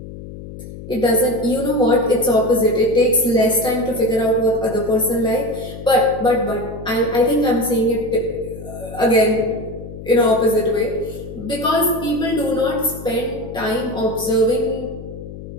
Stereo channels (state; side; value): noise; left; hum, 13 dB below the sound